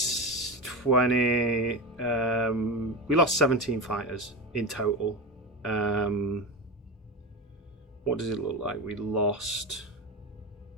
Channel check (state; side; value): normal; both; correlation 0.22